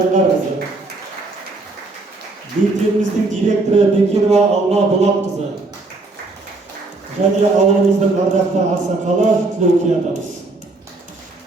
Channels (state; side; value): quieter; left; 3.3 dB